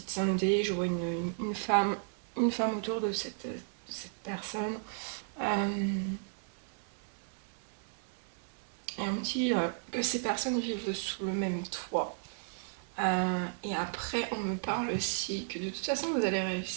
de santé. Je vois une femme autour de cette personne. Euh, et on me dit que ces personnes vivent sous le même toit. Et après, on me parle aussi que de toute façon, vous allez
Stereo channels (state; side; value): silent; left; digital silence